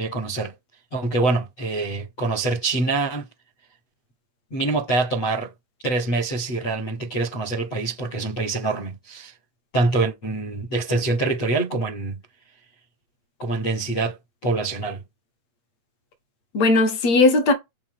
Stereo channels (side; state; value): right; late; 8.0 ms